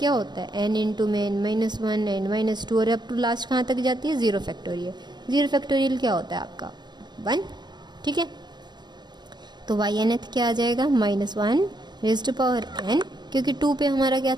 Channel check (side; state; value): left; late; 0.21 ms